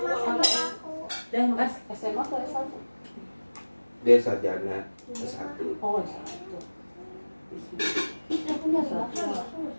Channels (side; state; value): both; inverted; correlation -1.00